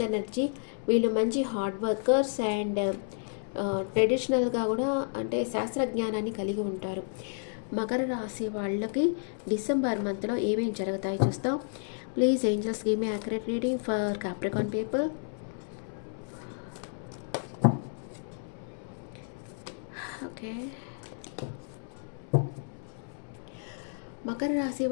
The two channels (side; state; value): right; silent; 57 dB below the other